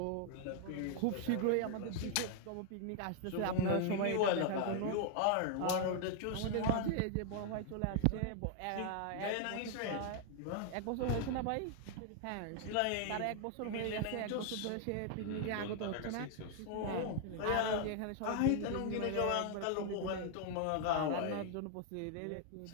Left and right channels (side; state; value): both; different; correlation 0.00